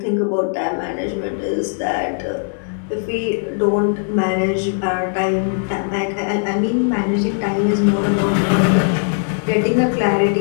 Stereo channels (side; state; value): right; silent; 67 dB below the other